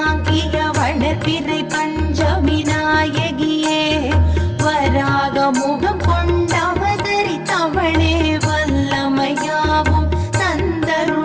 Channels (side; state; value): both; identical; correlation 1.00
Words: வளர்பிறை பஞ்சமி நாயகியே வராக முகம் கொண்டவதரித்தவளே வல்லமையாவும்